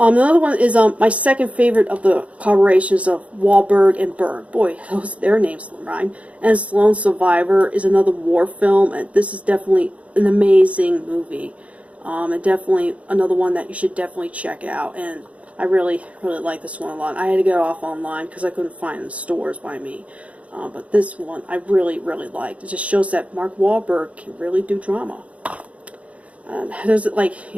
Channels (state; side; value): late; left; 0.065 ms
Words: one is my second favorite of the collaborations of Wahlberg and Berg. Boy, their names rhyme. And Lone Survivor is another war film, and this is definitely an amazing movie. And definitely another one that you should definitely check out. And I really, really like this one a lot. I had to get it off online because I couldn't find it in the stores by me. But this one I really, really liked. It just shows that Mark Wahlberg can really do drama. There's